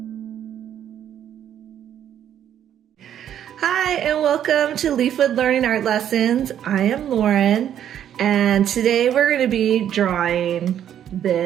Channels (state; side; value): quieter; left; 10.1 dB